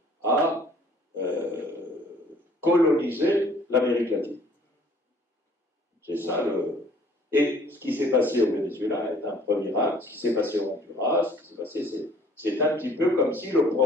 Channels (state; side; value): normal; both; correlation 0.57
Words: à coloniser l'Amérique latine. C'est ça le... Et ce qui s'est passé au Venezuela est un premier acte. Ce qui s'est passé au Honduras, ce qui s'est passé, c'est un petit peu comme si le